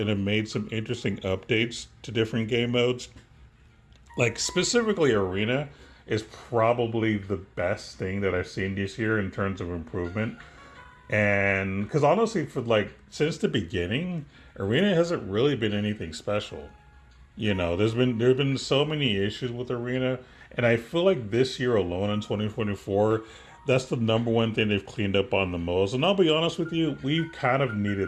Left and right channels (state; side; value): identical; both; correlation 1.00